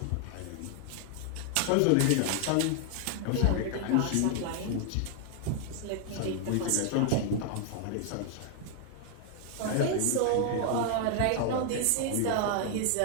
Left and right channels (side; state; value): both; different; correlation 0.00